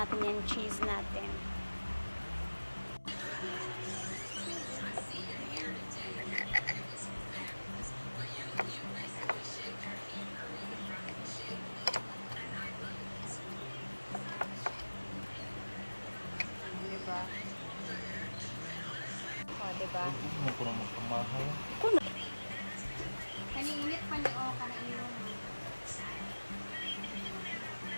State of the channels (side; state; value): both; inverted; correlation -1.00